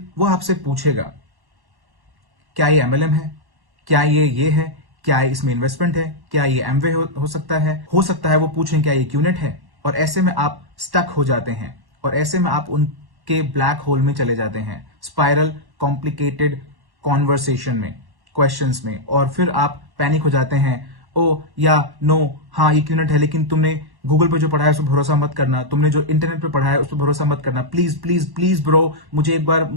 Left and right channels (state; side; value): late; left; 1.1 ms